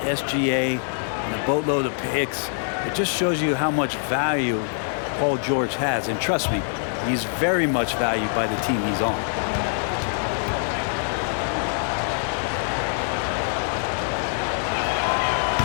and a boatload of picks. It just shows you how much value Paul George has. And trust me, he's very much valued by the team he's on.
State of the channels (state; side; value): silent; right; digital silence